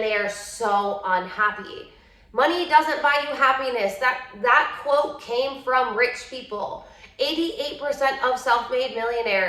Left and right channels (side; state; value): both; identical; correlation 1.00